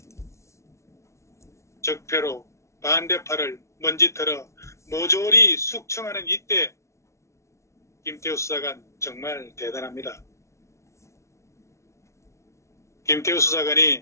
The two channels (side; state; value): right; late; 0.14 ms